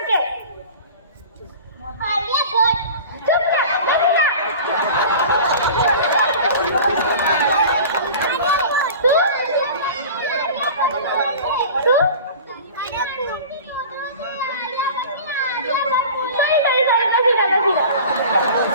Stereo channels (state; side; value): inverted; both; correlation -0.38